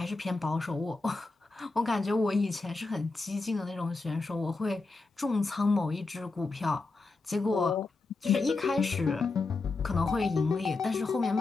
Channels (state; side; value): quieter; right; 3.7 dB